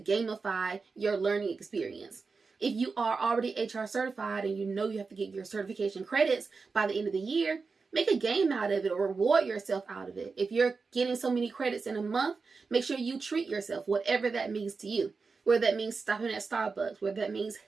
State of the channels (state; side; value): quieter; left; 4.6 dB